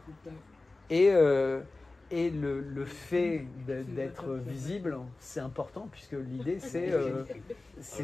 Et le fait d'être visible, c'est important, puisque l'idée,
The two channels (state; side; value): quieter; right; 3.2 dB